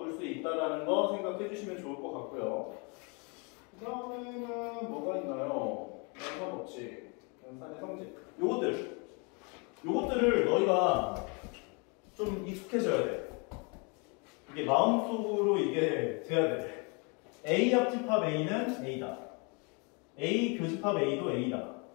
수 있다는 거 생각해 주시면 좋을 것 같고요. 그 다음에는 뭐가 있나요? 연산법칙, 연산의 성질. 요것들을 너희가 좀 익숙해져야 돼. 이게 마음속으로 이게 돼야 돼. A 합집합 A는 A다. A 교집합 A도 A다.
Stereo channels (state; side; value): quieter; right; 32.9 dB